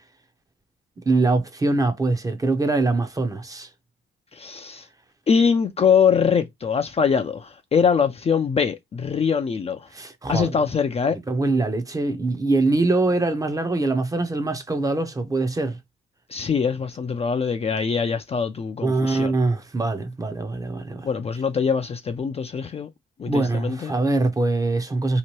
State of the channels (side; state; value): both; normal; correlation 0.69